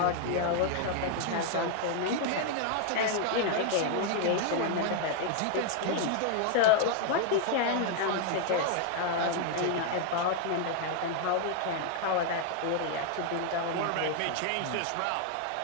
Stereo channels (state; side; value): different; both; correlation 0.00